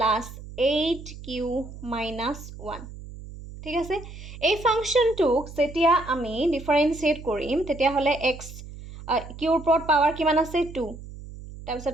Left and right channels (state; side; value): noise; right; hum, 14 dB below the sound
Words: 8q - 1 ঠিক আছে এই ফাংশনটোক যেতিয়া আমি ডিফাৰেন্সিয়েট কৰিম তেতিয়া হলে x q ৰ ওপৰত পাৱাৰ কিমান আছে 2 তাৰ